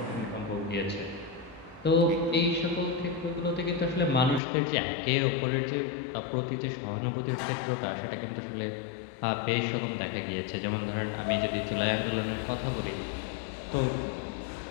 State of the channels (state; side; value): drops out; right; at 4.4 s